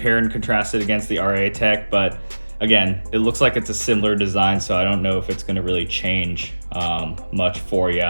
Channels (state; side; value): inverted; both; correlation -1.00